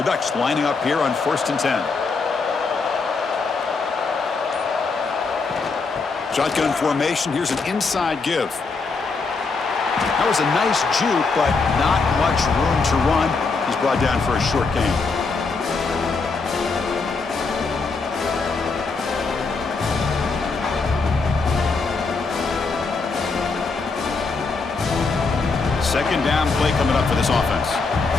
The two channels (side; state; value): right; quieter; 4.3 dB